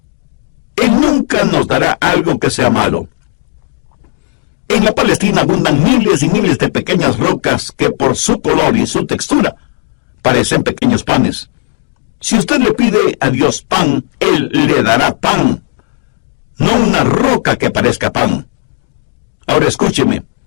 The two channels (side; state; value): right; silent; digital silence